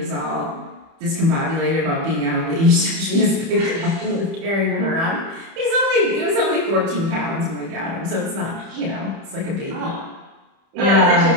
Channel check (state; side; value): late; left; 30 ms